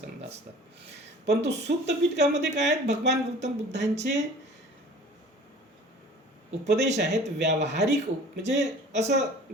असतात. परंतु सूत्रपीठकामध्ये काय आहेत? भगवान गौतम बुद्धांचे उपदेश आहेत व्यावहारिक म्हणजे असं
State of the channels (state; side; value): normal; both; correlation 0.46